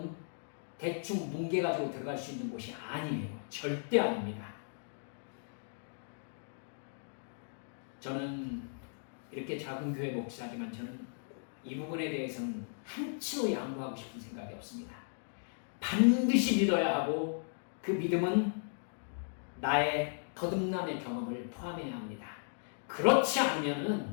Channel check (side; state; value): right; silent; digital silence